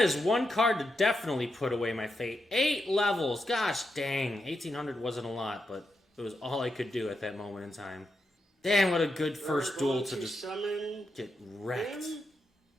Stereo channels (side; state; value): both; normal; correlation 0.85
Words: is 1 card to definitely put away my fate. 8 levels. Gosh dang. 1800 wasn't a lot, but it was all I could do at that moment in time. Damn, what a good first duel to just summon get wrecked. him,